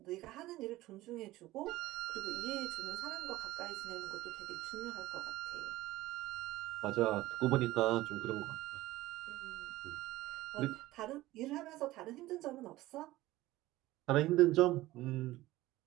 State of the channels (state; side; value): quieter; left; 17.3 dB